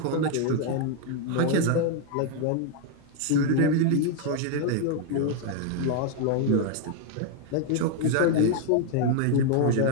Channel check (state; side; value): different; both; correlation 0.01